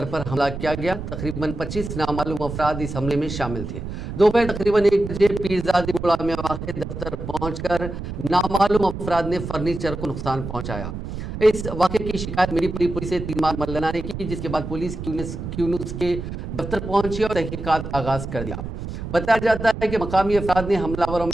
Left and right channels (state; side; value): noise; right; rumble, 7 dB below the sound